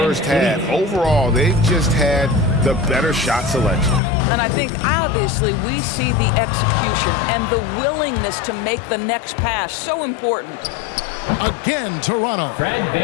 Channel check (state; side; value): drops out; right; at 4.0 s